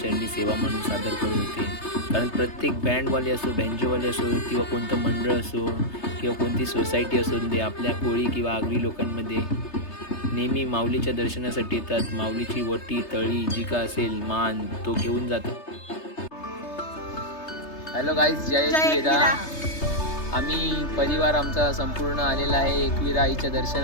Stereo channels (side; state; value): right; late; 3.3 ms